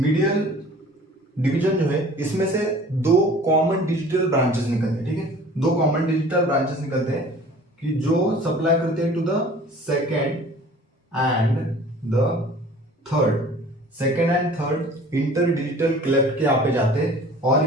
division जो है इसमें से दो कॉमन डिजिटल ब्रांचेस निकलते हैं, ठीक है, दो कॉमन डिजिटल ब्रांचेस निकलते हैं कि जो सप्लाई करते हैं to the second and the third inter digital cleft के यहाँ पे जाते हैं और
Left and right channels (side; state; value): both; normal; correlation 0.47